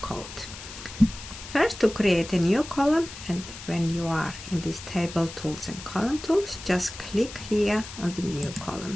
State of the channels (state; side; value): noise; left; hiss, 13 dB below the sound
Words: First, to create a new column, and when you are in this table tools and column tools, just click here on the new